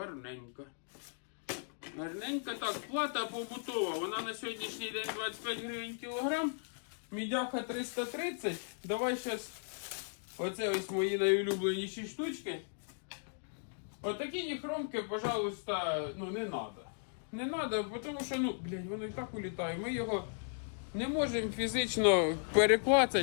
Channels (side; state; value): right; silent; digital silence